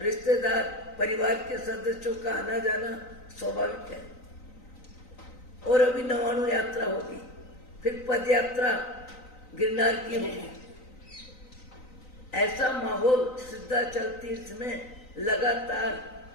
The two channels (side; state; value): right; late; 3.9 ms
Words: रिश्तेदार परिवार के सदस्यों का आना जाना स्वाभाविक है। और अभी 99 यात्रा होगी, फिर पद यात्रा गिरनार की होगी। ऐसा माहौल सिद्धाचल तीर्थ में लगातार